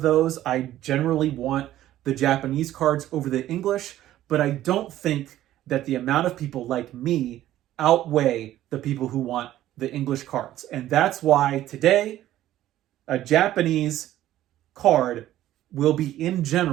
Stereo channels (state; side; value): quieter; left; 13.5 dB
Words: those. I generally want the Japanese cards over the English, but I don't think that the amount of people like me outweigh the people who want the English cards. And that's why today, a Japanese card will be, in